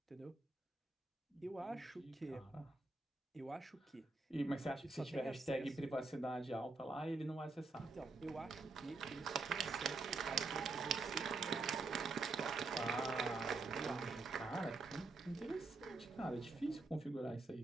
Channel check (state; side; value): quieter; left; 3.6 dB